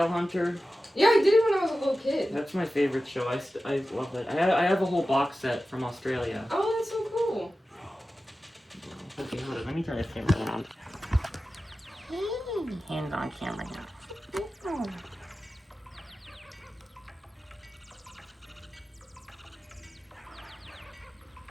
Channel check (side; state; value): both; normal; correlation 0.94